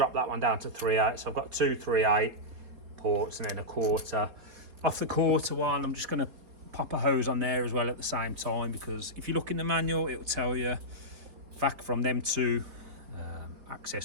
that one down to 3/8, so I've got 2 3/8 ports and then a 1/4. Off the 1/4 one, I'm just going to pop a hose on there as well at the same time, because if you look in the manual, it'll tell you vac from them 2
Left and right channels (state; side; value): late; left; 4.2 ms